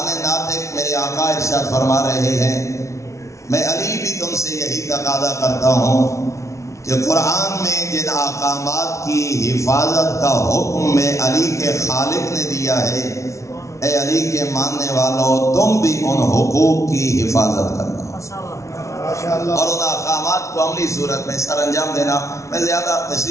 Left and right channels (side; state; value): right; late; 0.14 ms